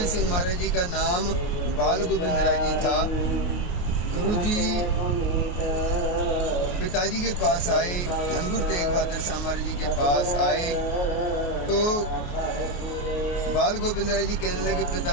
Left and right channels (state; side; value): late; right; 28 ms